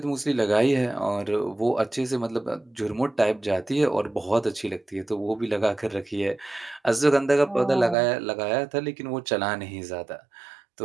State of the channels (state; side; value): drops out; left; at 8.0 s